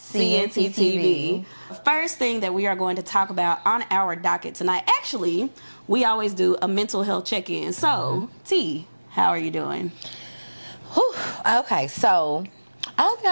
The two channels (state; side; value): inverted; both; correlation -1.00